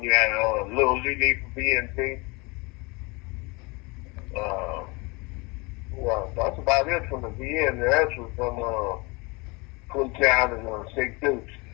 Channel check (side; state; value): right; quieter; 27.3 dB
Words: you had Lil Lily from VNG. Well, that's about it from the VN. The rest was from Town and Six Dukes.